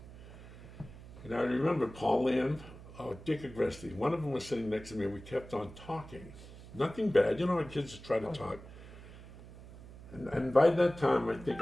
And I remember Paul Lamb, Dick Agresti, one of them was sitting next to me and we kept on talking. Nothing bad, our kids just try to talk. And by that time, I think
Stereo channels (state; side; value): noise; right; hum, 16 dB below the sound